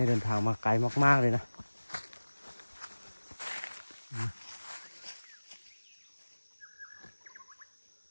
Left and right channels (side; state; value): both; inverted; correlation -1.00